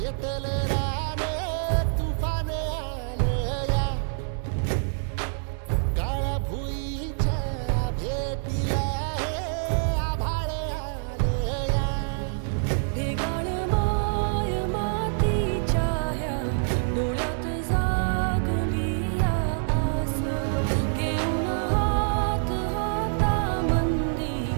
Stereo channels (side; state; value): left; silent; digital silence